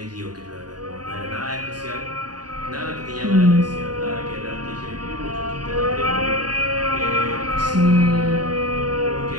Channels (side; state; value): left; late; 0.70 ms